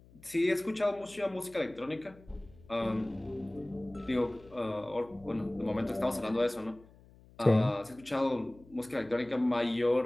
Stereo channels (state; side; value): noise; left; hum, 24 dB below the sound